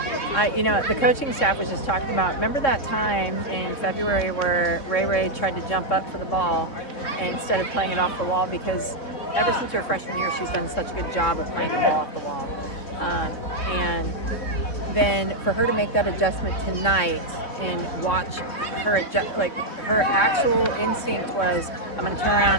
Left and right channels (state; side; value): late; right; 3.6 ms